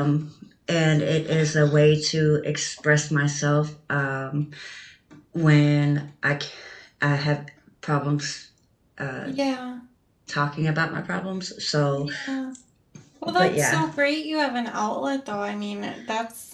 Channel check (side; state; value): both; identical; correlation 1.00